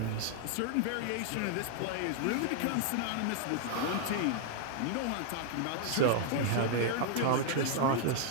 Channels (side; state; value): both; different; correlation 0.00